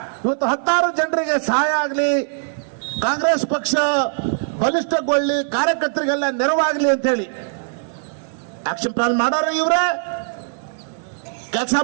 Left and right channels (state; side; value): silent; left; 61 dB below the other